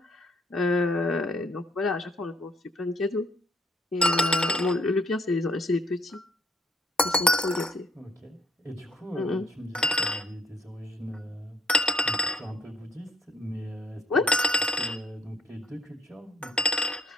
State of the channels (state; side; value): normal; both; correlation 0.65